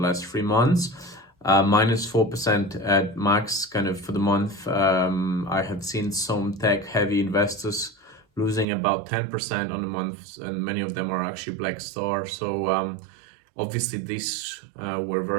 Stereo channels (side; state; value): left; drops out; at 8.7 s